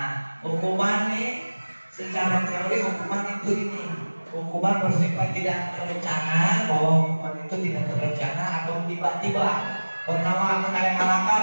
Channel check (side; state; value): both; inverted; correlation -1.00